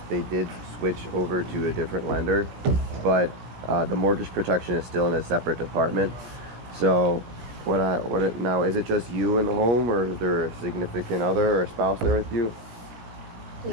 they did switch over to a different lender, but the mortgage protection is still in a separate department. So now, is it just you in the home, or is there a significant other or a spouse there with you?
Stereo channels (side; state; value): left; late; 17 ms